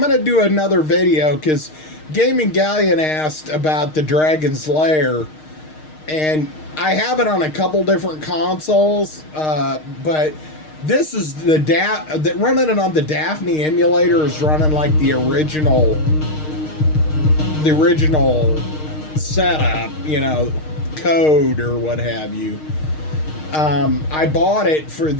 to do another video because Gaming Galleon asked about the Dragon's Lair. And I have it on a couple different consoles, but this is running it on the Daphne emulator is running like the original setup, you know, code or what have you. I bought it for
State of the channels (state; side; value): late; right; 6.5 ms